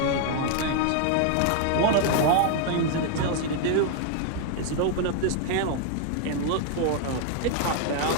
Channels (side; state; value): both; different; correlation 0.00